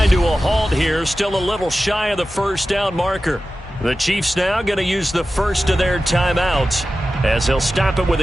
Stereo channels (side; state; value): both; normal; correlation 0.94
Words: to a halt here, still a little shy of the first down marker. The Chiefs now going to use the first of their timeouts as they'll stop it with